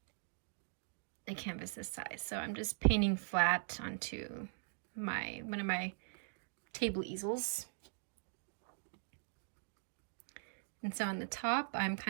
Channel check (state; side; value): silent; left; digital silence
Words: a canvas this size, so I'm just painting flat onto one of my table easels. And so on the top, I'm